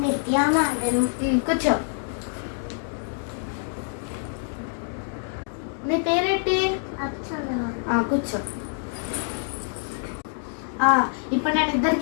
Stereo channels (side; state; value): right; silent; 61 dB below the other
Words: నిత్య మేడం. కూర్చో. నీ పేరేంటి? కూర్చో. ఇప్పుడు నేను